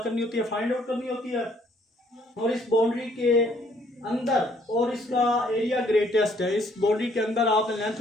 होती है, फाइंड आउट करनी होती है। और इस बाउंड्री के अंदर और इसका एरिया ग्रेटेस्ट है, इस बाउंड्री के अंदर आपने लेंथ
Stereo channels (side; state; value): both; normal; correlation 0.64